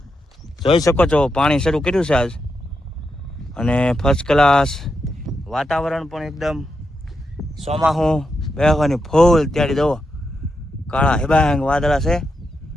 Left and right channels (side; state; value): both; normal; correlation 0.85